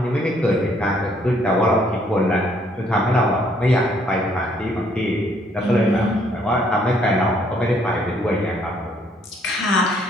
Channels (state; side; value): normal; both; correlation 0.66